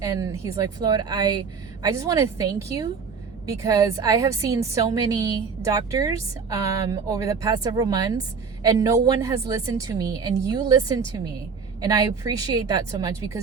and he's like, Floyd, I just want to thank you, because I have seen so many doctors over the past several months, and no one has listened to me, and you listened to me, and I appreciate that so much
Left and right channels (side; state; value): left; quieter; 5.6 dB